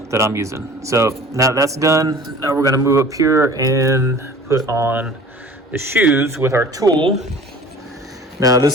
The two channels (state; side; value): normal; both; correlation 0.45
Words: that I'm using. So now that's done, now we're gonna move up here and put on the shoes with our tool. Now